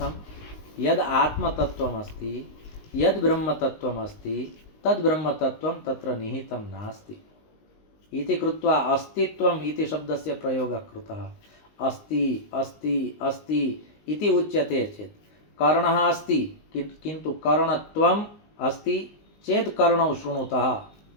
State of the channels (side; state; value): right; late; 19 ms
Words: यद् आत्मतत्त्वमस्ति, यद् ब्रह्मतत्त्वमस्ति तद्ब्रह्मतत्त्वं तत्र निहितं नास्ति इति कृत्वा अस्तित्वम् इति शब्दस्य प्रयोगः कृतः। अस्ति अस्ति अस्ति इति उच्यते चेत् कर्णः अस्ति किन्तु कर्णत्वम् अस्ति चेत् कर्णौ शृणुतः।